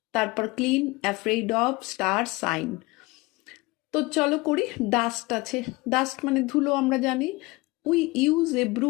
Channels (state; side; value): quieter; right; 22.9 dB